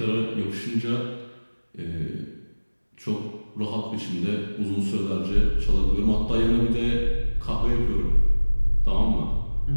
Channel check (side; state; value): both; inverted; correlation -1.00